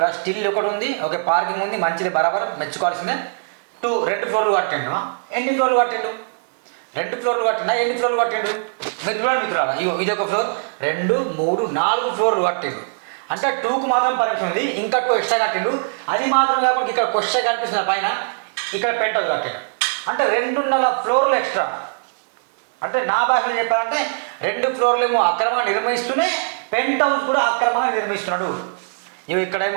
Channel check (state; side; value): silent; left; digital silence